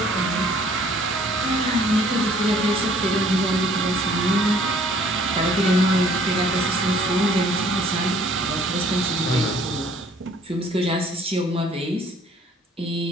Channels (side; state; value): both; normal; correlation 0.58